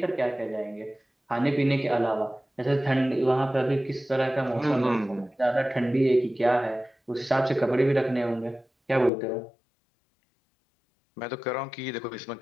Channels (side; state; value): right; drops out; at 9.1 s